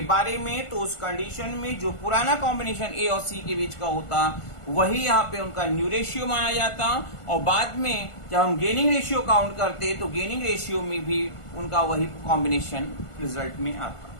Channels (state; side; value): late; right; 1.5 ms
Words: बारे में तो उस कंडीशन में जो पुराना कॉम्बिनेशन ए और सी के बीच का होता वही यहाँ पे उनका न्यू रेशियो माना जाता, और बाद में जब हम गेनिंग रेशियो काउंट करते तो गेनिंग रेशियो में भी उनका वही कॉम्बिनेशन रिजल्ट में आता।